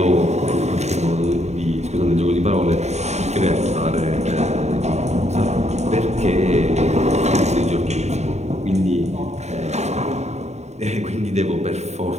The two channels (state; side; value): late; left; 0.32 ms